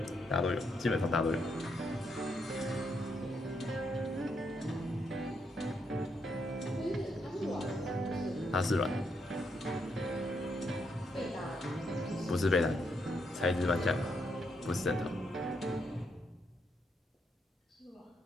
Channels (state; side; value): normal; both; correlation 0.78